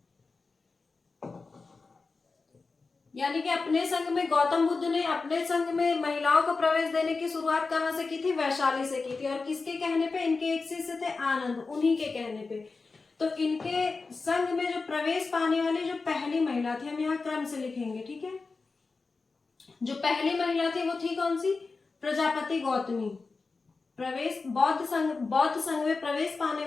यानी कि अपने संघ में गौतम बुद्ध ने अपने संघ में महिलाओं को प्रवेश देने की शुरुआत कहाँ से की थी? वैशाली से की थी। और किसके कहने पे? इनके एक शिष्य थे आनंद, उन्हीं के कहने पे। तो इनके संघ में जो प्रवेश पाने वाली जो पहली महिला थी, हम यहाँ क्रम से लिखेंगे, ठीक है। जो पहली महिला थी वो थी कौन सी? प्रजापति गौतमी। प्रवेश बौद्ध संघ में प्रवेश पाने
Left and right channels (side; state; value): right; quieter; 4.1 dB